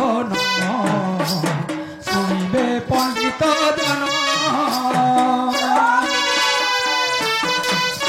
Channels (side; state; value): both; identical; correlation 1.00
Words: শুনবে পণ্ডিত জন